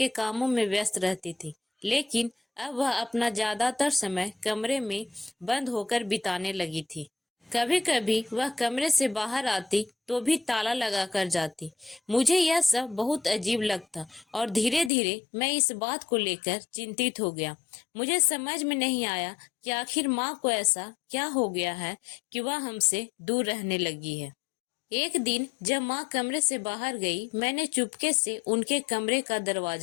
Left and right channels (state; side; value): drops out; right; at 14.9 s